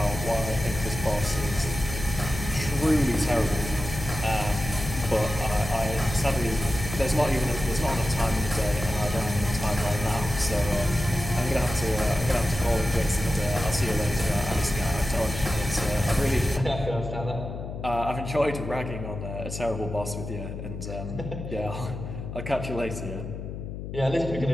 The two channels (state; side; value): noise; left; hum, 8 dB below the sound